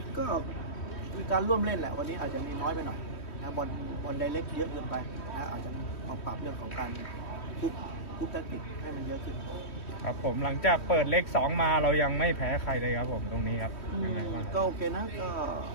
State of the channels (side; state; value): right; late; 3.1 ms